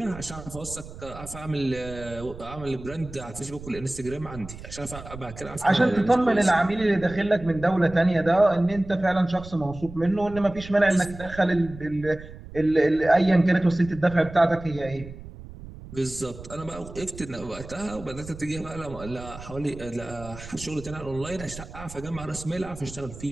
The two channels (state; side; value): noise; right; rumble, 14 dB below the sound